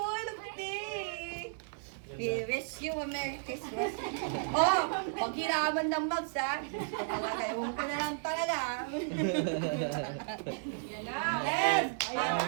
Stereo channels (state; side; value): silent; left; 55 dB below the other